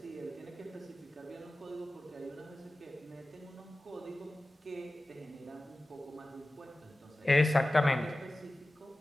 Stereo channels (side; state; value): both; normal; correlation 0.96